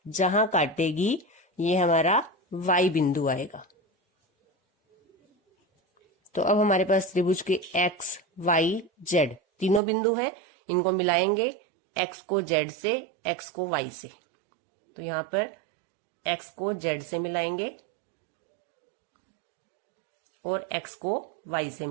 जहां काटेगी ये हमारा वाई बिंदु आएगा। तो अब हमारे पास त्रिभुज के एक्स वाई जेड तीनों बिंदु हैं। इनको मिलाएंगे, एक्स को जेड से, एक्स को वाई से। तो यहां पर एक्स को जेड से मिलाएंगे और एक्स को वाई से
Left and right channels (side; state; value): left; drops out; at 9.8 s